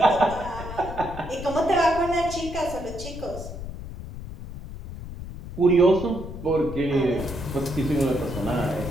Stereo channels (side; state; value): left; noise; rumble, 10 dB below the sound